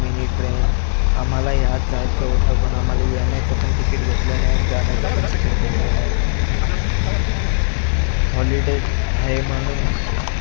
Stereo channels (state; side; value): silent; right; 64 dB below the other